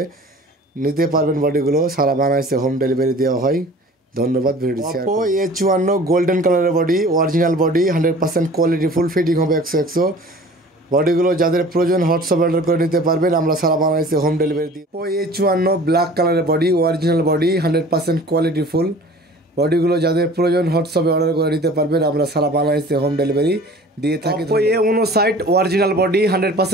নিতে পারবেন। বডিগুলো সারা বাংলাদেশে হোম ডেলিভারি দেওয়া হয়। ধন্যবাদ video share. Oppo A54 golden কালারের body, original body, 100% quality full, fitting হবে 100 বডিগুলো যাদের প্রয়োজন হোয়াটসঅ্যাপে অর্ডার করে নিতে পারবেন, আমরা সারা বাংলাদেশে হোম ডেলিভারি দিই। অপো A54 ব্ল্যাক কালারের body, original body, 100% quality full বডিগুলো যাদের প্রয়োজন হোয়াটসঅ্যাপে অর্ডার করে নিতে পারবেন, আমরা সারা বাংলাদেশে হোম ডেলিভারি দিয়ে থাকি। Oppo A59 original body,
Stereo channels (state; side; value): normal; both; correlation 0.45